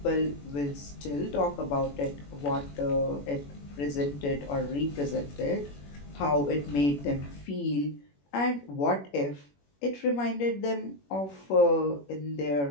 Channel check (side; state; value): right; late; 21 ms